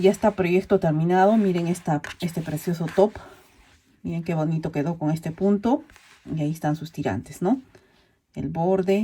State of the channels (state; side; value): identical; both; correlation 1.00